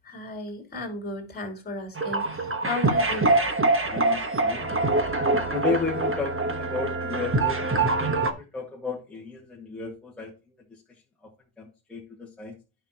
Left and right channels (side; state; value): both; normal; correlation -0.14